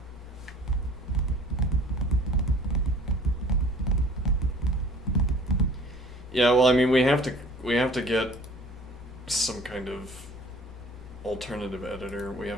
Yeah, well, I mean, we have to get some kind of alternative editor. We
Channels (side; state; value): both; normal; correlation 0.50